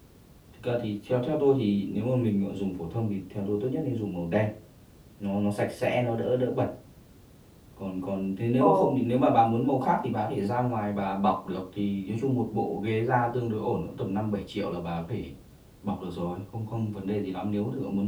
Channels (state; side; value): identical; both; correlation 1.00